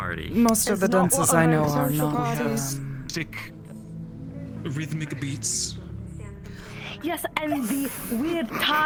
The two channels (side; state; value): both; identical; correlation 1.00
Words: Most of the dances I know are not. parties. Stick rhythmic beats. Yes, and the weird